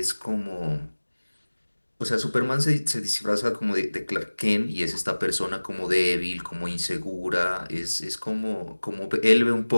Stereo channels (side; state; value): both; inverted; correlation -1.00